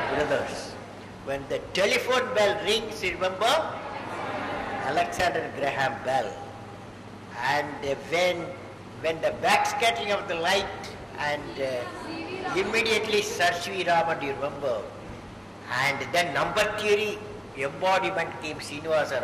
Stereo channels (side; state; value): both; identical; correlation 1.00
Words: brothers. When the telephone bell rings, you remember Alexander Graham Bell. And when the backscattering of the light and immediately Sir C.V. Raman, you remember. And then number theory embodiment came Srinivasa